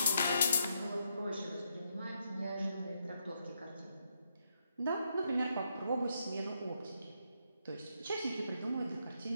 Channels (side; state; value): both; inverted; correlation -0.79